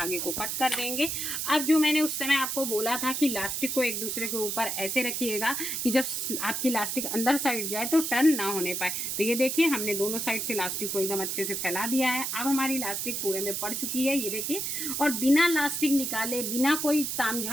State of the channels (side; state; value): right; noise; hiss, 2 dB below the sound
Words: को कट कर देंगे। अब जो मैंने उस समय आपको बोला था कि इलास्टिक को एक दूसरे के ऊपर ऐसे रखिएगा कि जब आपकी इलास्टिक अंदर साइड जाए तो टर्न ना होने पाए। तो ये देखिए हमने दोनों साइड से इलास्टिक को एकदम अच्छे से फैला दिया है। अब हमारी इलास्टिक पूरे में पड़ चुकी है, ये देखिए। और बिना इलास्टिक निकाले, बिना कोई